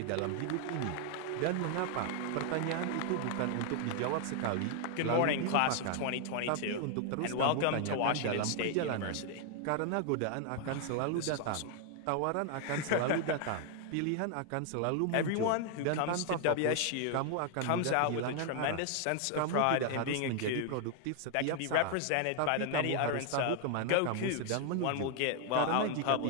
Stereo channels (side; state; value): both; different; correlation 0.00